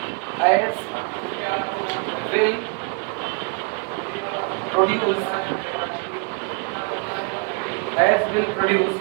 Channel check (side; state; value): left; quieter; 36.2 dB